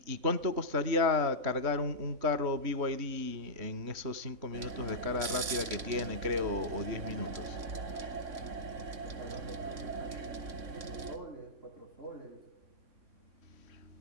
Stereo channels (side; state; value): left; late; 3.6 ms